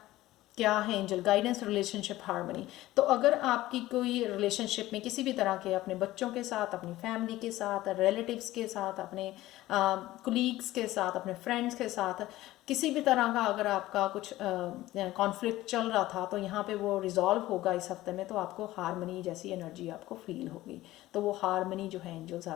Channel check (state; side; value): quieter; right; 16.4 dB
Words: क्या है एंजल गाइडेंस, रिलेशनशिप हार्मनी। तो अगर आपकी कोई रिलेशनशिप में किसी भी तरह के, अपने बच्चों के साथ, अपनी फैमिली के साथ, रिलेटिव्स के साथ, अपने कुलीग्स के साथ, अपने फ्रेंड्स के साथ किसी भी तरह का अगर आपका कुछ कॉन्फ्लिक्ट चल रहा था, तो यहाँ पे वो रिजॉल्व होगा इस हफ्ते में। तो आपको हार्मनी जैसी एनर्जी आपको फील होगी। तो वो हार्मनी जो है एंजल्स